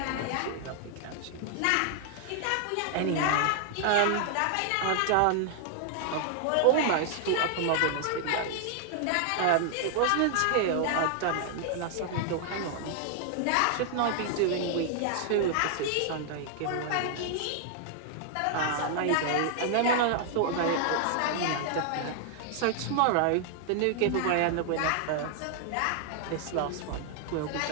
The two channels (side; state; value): both; different; correlation -0.01